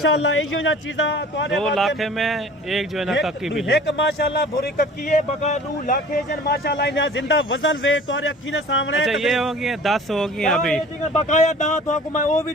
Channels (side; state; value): both; normal; correlation 0.46